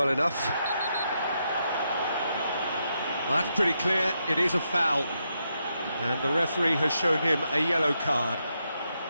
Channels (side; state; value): both; inverted; correlation -0.82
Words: enough. That's pretty clear. It is a foul. And the referee has shown him a yellow card.